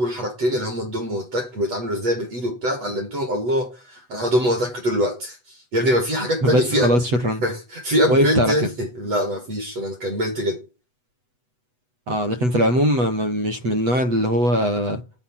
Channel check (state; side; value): late; left; 8.1 ms